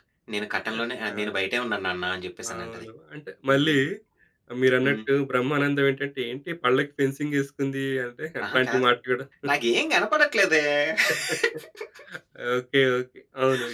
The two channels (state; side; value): identical; both; correlation 1.00